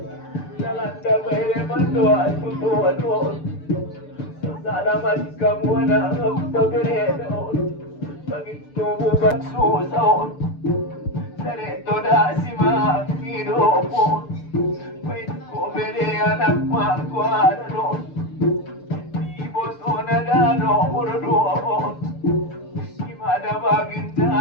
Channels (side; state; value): right; late; 6.8 ms